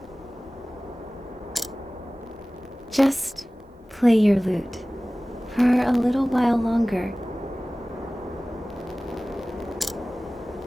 Just play your lute for a little while longer.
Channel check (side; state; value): both; normal; correlation 0.98